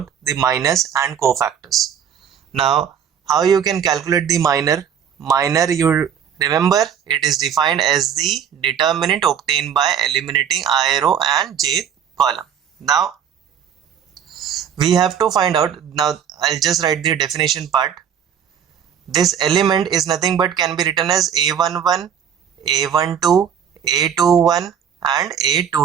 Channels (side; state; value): left; quieter; 8.4 dB